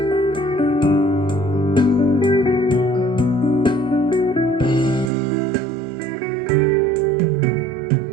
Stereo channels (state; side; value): drops out; left; at 5.1 s